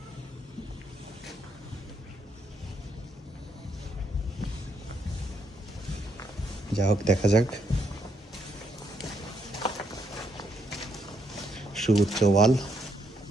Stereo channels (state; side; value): normal; both; correlation 0.76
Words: যা হোক, দেখা যাক। সুউচ্চ ওয়াল,